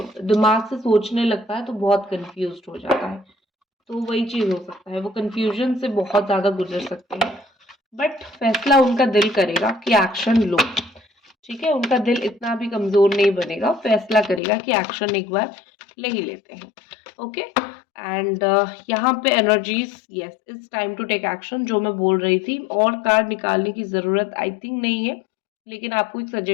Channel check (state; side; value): drops out; right; at 14.4 s